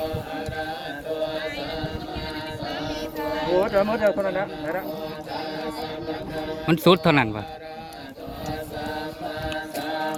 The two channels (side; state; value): both; identical; correlation 1.00